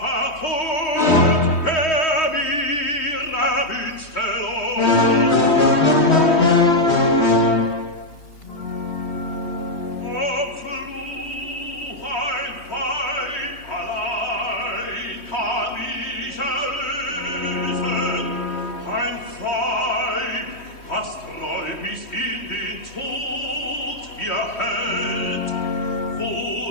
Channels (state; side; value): late; right; 3.1 ms